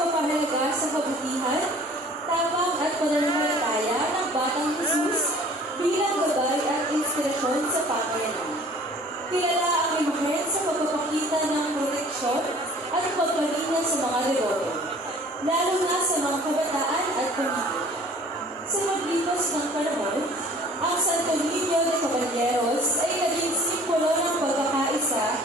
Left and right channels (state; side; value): normal; both; correlation 0.51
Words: sa kabutihan, tapang at pananampalataya ng Batang Jesus bilang gabay at inspirasyon sa pamayanan. Kilala ang imahen sa pagpapakita ng proteksyon at pagpalingan sa mga deboto, lalo na sa mga kabataan at pamilya. Sa paglipas ng panahon, ang Santo Niño de Caballeros ay naging simbolo ng pagkakaisa,